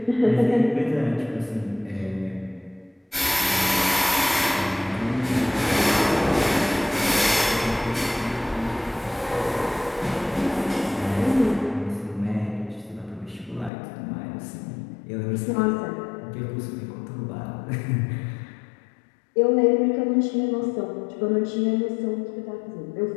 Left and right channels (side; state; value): right; drops out; at 13.7 s